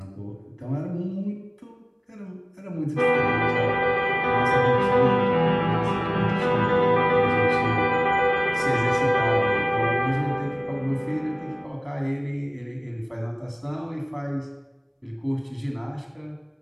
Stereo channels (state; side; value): identical; both; correlation 1.00